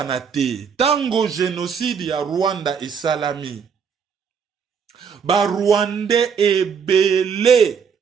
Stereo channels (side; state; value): left; quieter; 6.6 dB